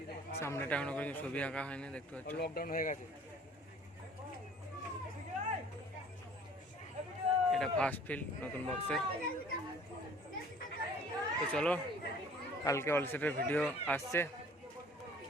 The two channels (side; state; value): both; normal; correlation 0.51